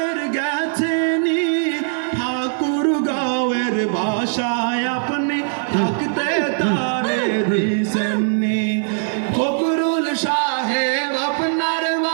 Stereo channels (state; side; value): silent; left; 64 dB below the other